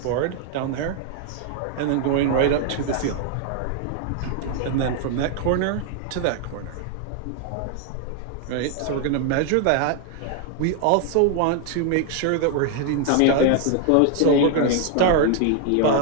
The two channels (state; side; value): different; both; correlation 0.00